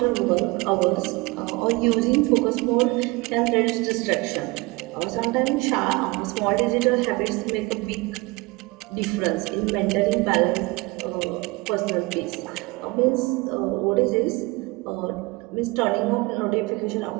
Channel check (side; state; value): left; quieter; 24.3 dB